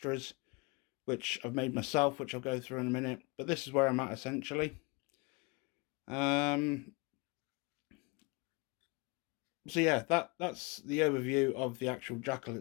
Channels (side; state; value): right; quieter; 28.0 dB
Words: which I've made myself, which I'll go through in a minute. But this is where I'm at essentially. So yeah, that's the overview of the actual Jackal